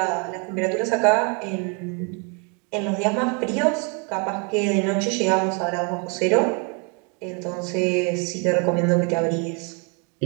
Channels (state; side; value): quieter; left; 35.3 dB